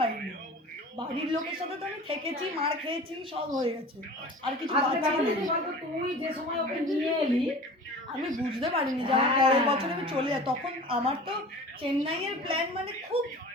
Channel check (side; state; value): both; normal; correlation 0.39